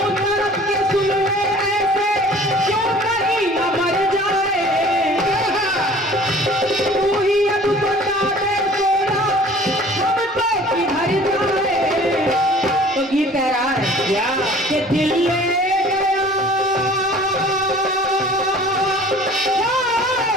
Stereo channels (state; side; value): normal; both; correlation 0.48